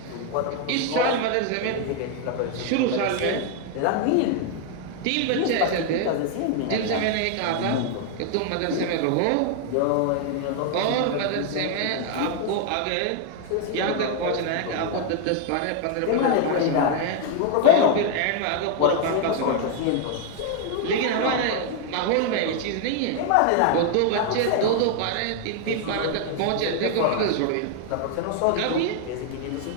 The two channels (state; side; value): different; both; correlation 0.00